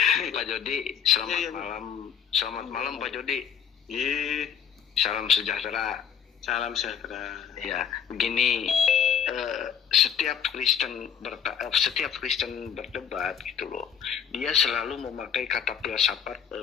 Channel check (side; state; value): right; quieter; 7.8 dB